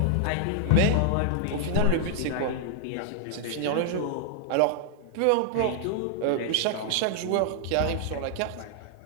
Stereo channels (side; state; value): both; different; correlation -0.01